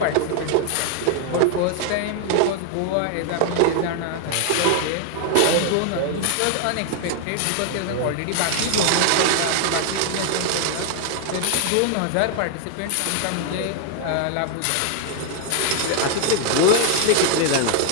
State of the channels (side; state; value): both; different; correlation 0.00